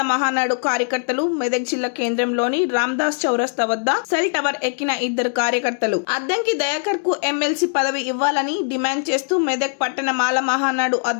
మహానాడు కార్యకర్తలు మెదక్ జిల్లా కేంద్రంలోని రామ్దాస్ చౌరస్తా వద్ద సెల్ టవర్ ఎక్కిన ఇద్దరు కార్యకర్తలు అద్దంకి దయాకర్ కు ఎమ్మెల్సీ పదవి ఇవ్వాలని డిమాండ్ చేస్తూ మెదక్ పట్టణ మాల మహానాడు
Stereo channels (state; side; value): silent; right; 65 dB below the other